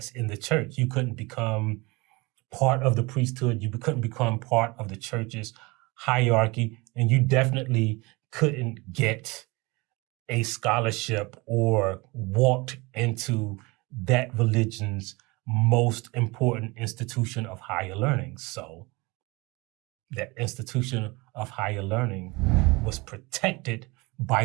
in the church. You couldn't become part of the priesthood. You couldn't become part of the church's hierarchy. And you definitely couldn't get a scholarship or walked into that religion's most important institution of higher learning. So that institution of higher learning was protected by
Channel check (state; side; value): quieter; left; 24.9 dB